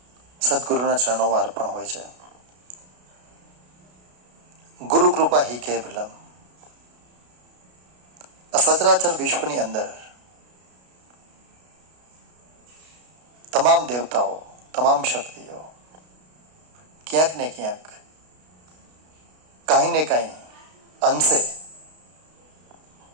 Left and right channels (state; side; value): late; left; 33 ms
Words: સદગુરુના ચરણોમાં અર્પણ હોય છે. ગુરુ કૃપા હી કેવલમ. આ સચરાચર વિશ્વની અંદર તમામ દેવતાઓ, તમામ શક્તિઓ ક્યાંક ને ક્યાંક કાંઈ ને કાંઈ અંશે